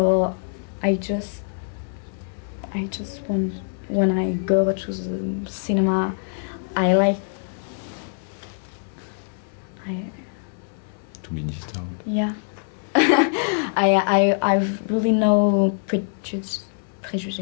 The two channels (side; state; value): right; silent; digital silence